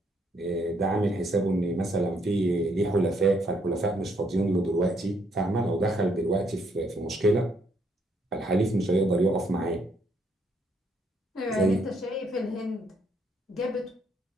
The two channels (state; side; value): normal; both; correlation 0.71